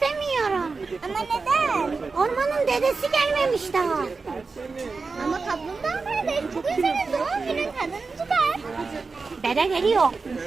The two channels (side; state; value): left; quieter; 4.3 dB